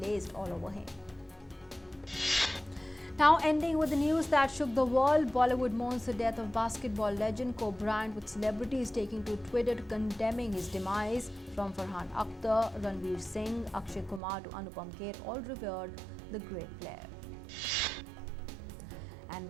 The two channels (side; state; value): left; drops out; at 14.2 s